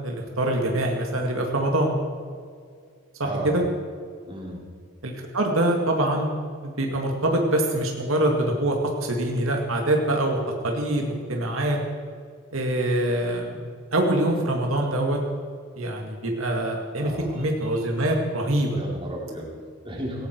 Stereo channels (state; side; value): normal; both; correlation 0.34